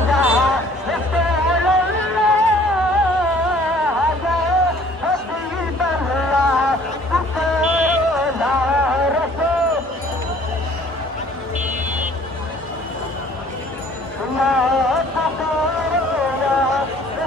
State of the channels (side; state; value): both; normal; correlation 0.55